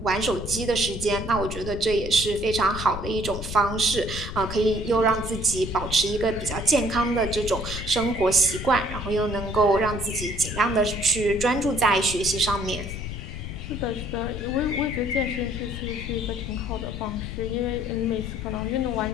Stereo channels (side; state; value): left; noise; rumble, 7 dB below the sound